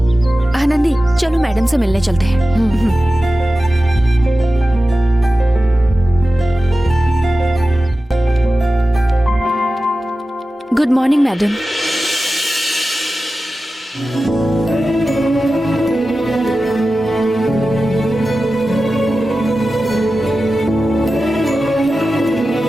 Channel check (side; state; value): both; normal; correlation 0.94